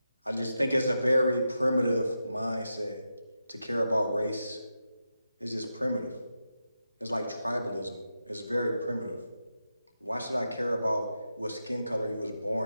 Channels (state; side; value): inverted; both; correlation -0.88